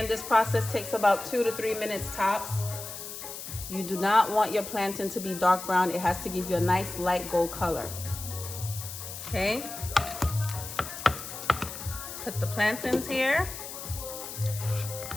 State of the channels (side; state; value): left; noise; hiss, 9 dB below the sound